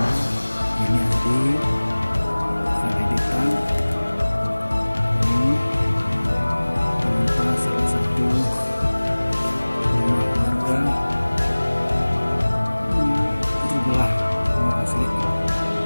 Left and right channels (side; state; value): both; inverted; correlation -1.00